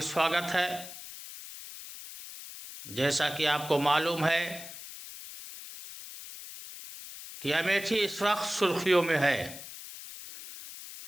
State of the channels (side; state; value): left; noise; hiss, 13 dB below the sound